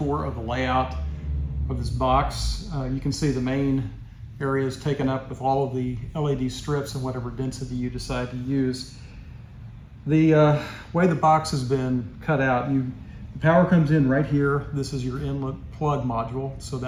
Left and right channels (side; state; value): both; identical; correlation 1.00